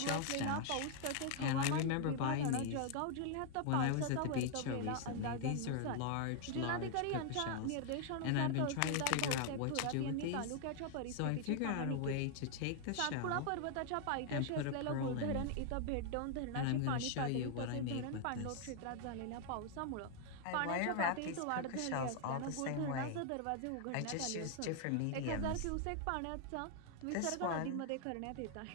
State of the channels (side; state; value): both; different; correlation 0.00